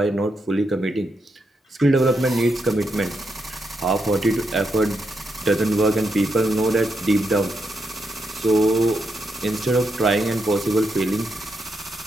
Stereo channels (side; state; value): both; normal; correlation 0.82